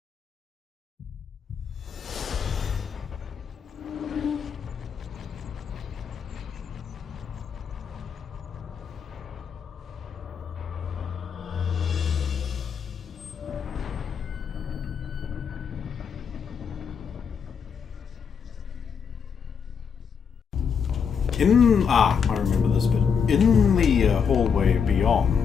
I remember this bit. In the hallway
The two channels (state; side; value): quieter; right; 6.6 dB